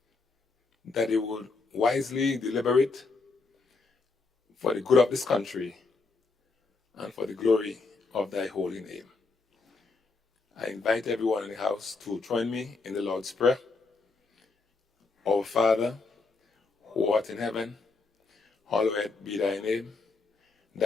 that they would wisely deliberate for the good of this country and for the glory of thy holy name. I invite everyone in the house to join me in the Lord's Prayer. Our Father, who art in heaven, hallowed be thy name.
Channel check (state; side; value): quieter; right; 3.9 dB